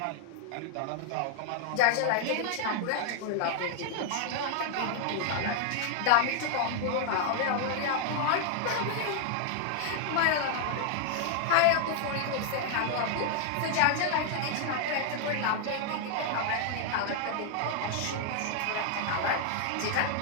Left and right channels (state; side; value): different; both; correlation 0.00